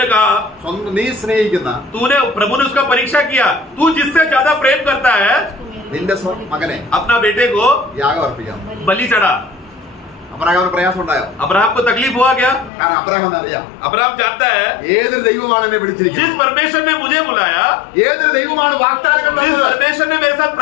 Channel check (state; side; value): drops out; right; at 12.7 s